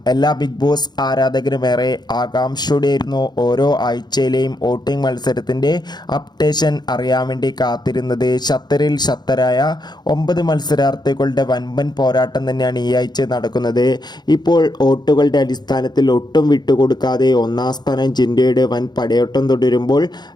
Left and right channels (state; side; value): late; right; 0.20 ms